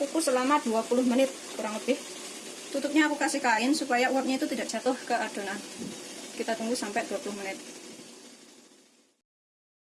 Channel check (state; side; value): identical; both; correlation 1.00